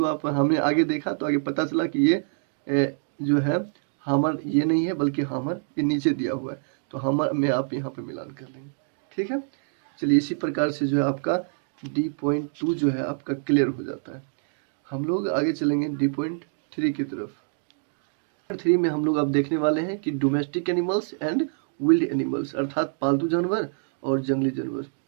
आप हमने आगे देखा तो आगे पता चला कि ये जो है हमर ये नहीं है, बल्कि हमर ये नीचे दिया हुआ है, तो हमर में आप यहाँ पे मिलान कर लेंगे, ठीक है। चलिए इसी प्रकार से जो है आपका D.2 जो है आपका क्लियर हो जाता है। हम लोग आगे चलेंगे D.3 की तरफ। 3 में हम लोग अब देखने वाले हैं कि domestic animals and wild animals, अर्थात पालतू जानवर और जंगली जानवर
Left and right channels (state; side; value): silent; left; digital silence